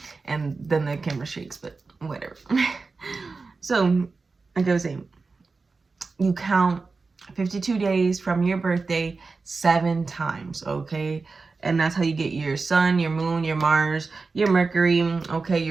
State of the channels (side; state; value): left; quieter; 4.1 dB